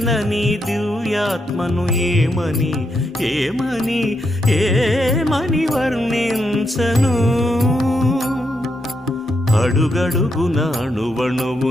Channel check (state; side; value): normal; both; correlation 0.81